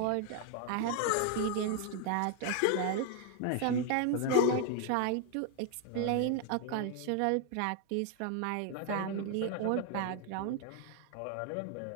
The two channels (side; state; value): both; different; correlation 0.00